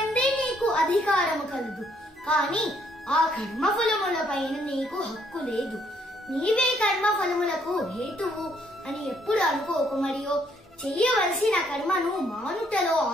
నీకు అధికారము కలదు, కాని ఆ కర్మఫలములపైన నీకు హక్కు లేదు. నీవే కర్మఫలములకు హేతువు అని ఎప్పుడు అనుకోకు, మరియు చెయ్యవలసిన కర్మను మానుటలో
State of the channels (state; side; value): normal; both; correlation 0.69